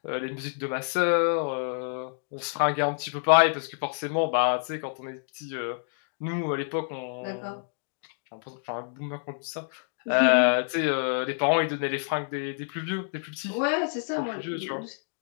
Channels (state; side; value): silent; right; digital silence